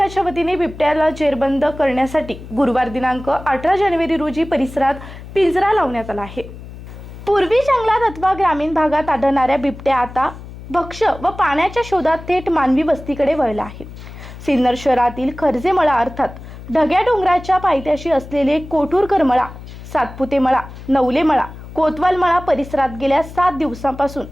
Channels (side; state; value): left; noise; hum, 14 dB below the sound